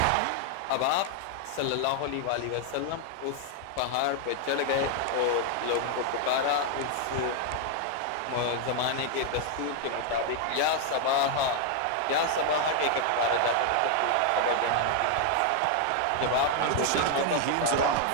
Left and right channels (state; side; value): different; both; correlation 0.00